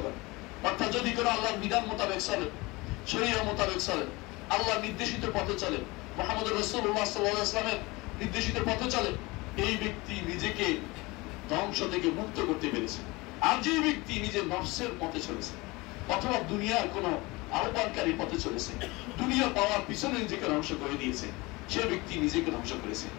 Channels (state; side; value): quieter; right; 23.4 dB